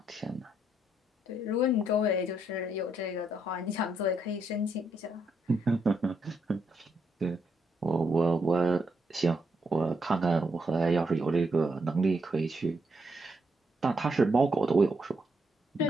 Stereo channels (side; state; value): both; normal; correlation 0.77